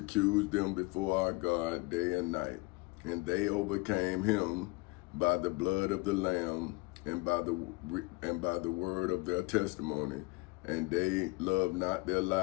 them before our God day and night. And they overcame him by the blood of the Lamb and by the word of their testimony, and they loved not their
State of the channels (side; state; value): right; quieter; 23.8 dB